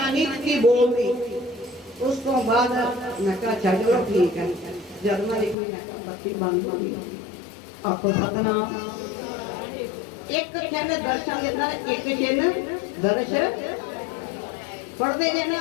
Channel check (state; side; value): drops out; right; at 5.6 s